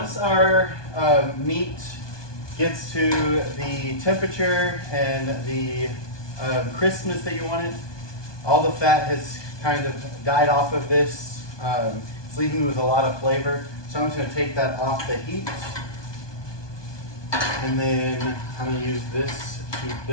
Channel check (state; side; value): late; right; 1.2 ms